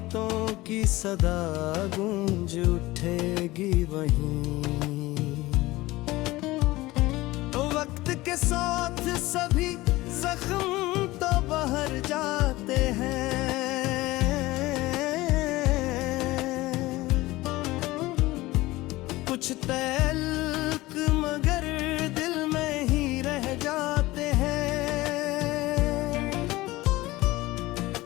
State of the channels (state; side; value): quieter; right; 19.1 dB